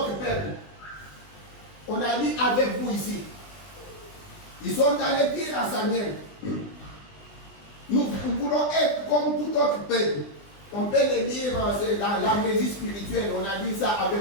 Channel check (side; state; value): right; late; 20 ms